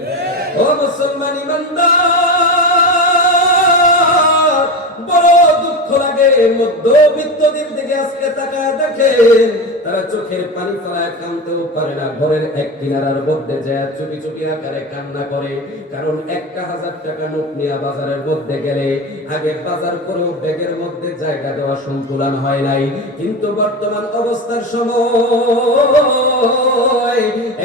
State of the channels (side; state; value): both; normal; correlation 0.23